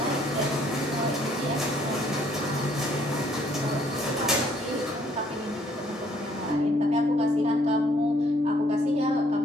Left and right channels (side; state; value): both; normal; correlation 0.65